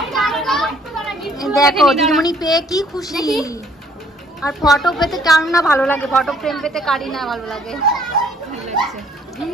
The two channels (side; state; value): both; normal; correlation 0.61